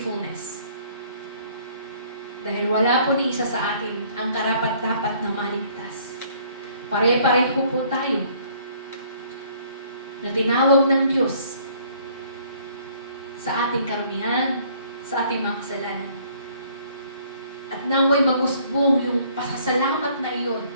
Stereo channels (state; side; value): inverted; both; correlation -0.60